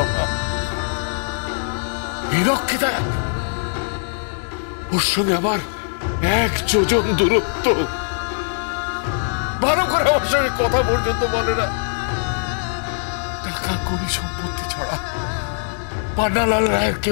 হীরককে দেখ, ওর সঙ্গে আমার 1 যোজন দূরত্ব। ভালো করে আমার সঙ্গে কথা পর্যন্ত বলে না। টাকা করি সম্পত্তি ছড়া পান্নালাল রায়ের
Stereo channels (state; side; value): silent; right; 64 dB below the other